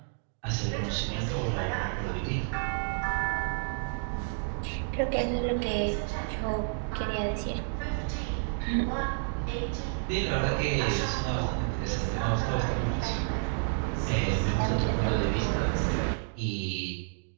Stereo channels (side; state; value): left; silent; digital silence